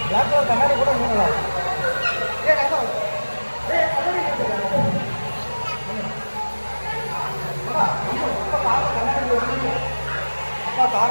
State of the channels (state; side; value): inverted; both; correlation -1.00